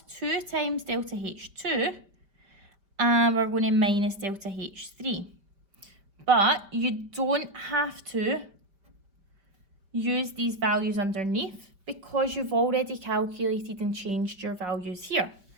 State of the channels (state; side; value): late; left; 5.1 ms